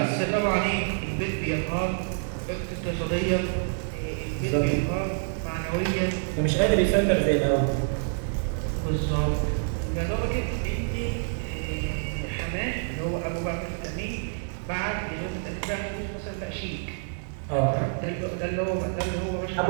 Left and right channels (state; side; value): silent; left; digital silence